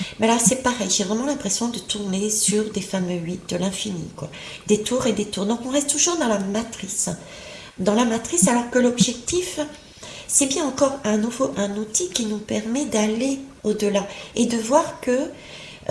Mais là, c'est pareil, j'ai vraiment l'impression de tourner sur des fameux 8 de l'infini, quoi. Des tours et des tours. Donc on reste toujours dans la matrice. Dans la matrice, alors que l'objectif, c'est bien encore un outil qui nous permet d'aller au-delà et de voir que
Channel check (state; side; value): identical; both; correlation 1.00